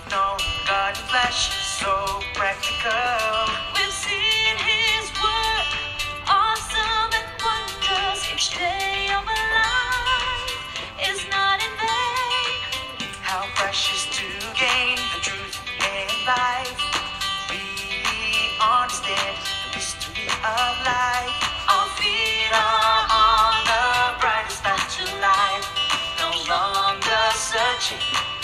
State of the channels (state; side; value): identical; both; correlation 1.00